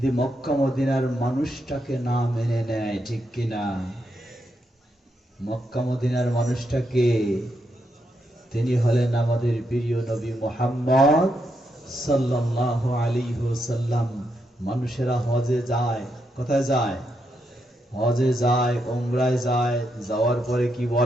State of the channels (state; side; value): normal; both; correlation 0.81